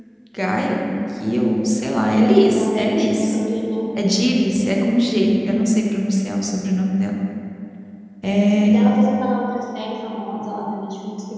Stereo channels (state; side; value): identical; both; correlation 1.00